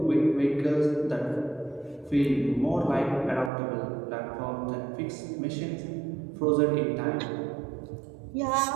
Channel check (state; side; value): drops out; left; at 3.5 s